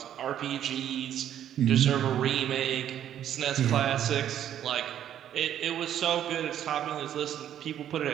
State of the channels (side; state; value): left; quieter; 10.5 dB